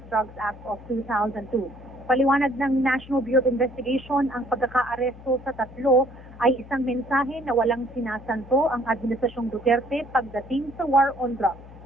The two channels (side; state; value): left; noise; hum, 18 dB below the sound